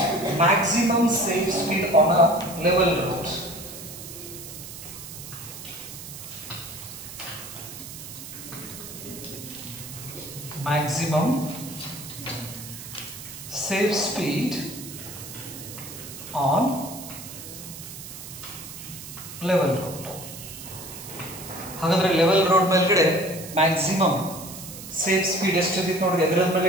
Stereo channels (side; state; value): right; noise; hiss, 12 dB below the sound